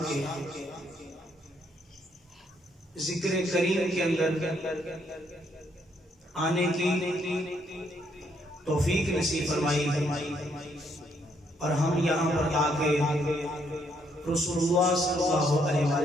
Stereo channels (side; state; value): both; normal; correlation 0.72